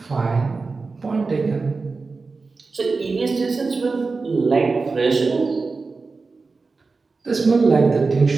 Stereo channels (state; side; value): quieter; left; 4.1 dB